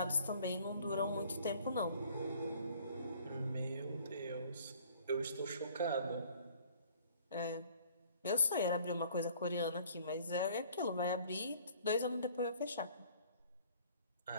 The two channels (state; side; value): inverted; both; correlation -0.55